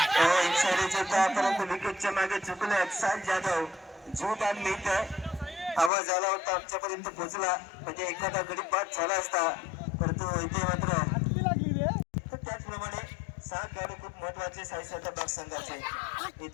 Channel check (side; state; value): right; drops out; at 5.9 s